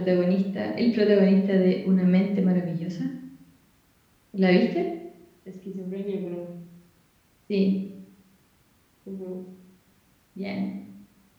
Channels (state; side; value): identical; both; correlation 1.00